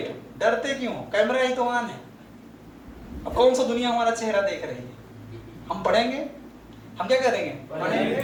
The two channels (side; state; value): both; identical; correlation 1.00